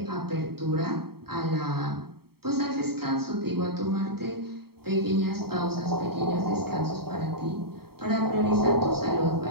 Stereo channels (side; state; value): left; late; 0.95 ms